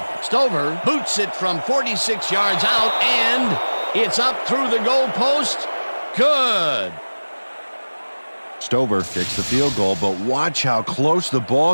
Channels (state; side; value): inverted; both; correlation -1.00